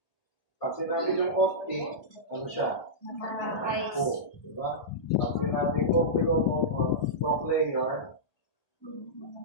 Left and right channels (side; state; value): right; late; 1.2 ms